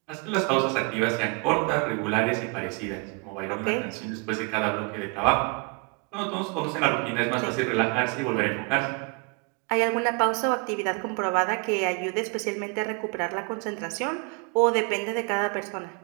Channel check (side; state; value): left; quieter; 33.4 dB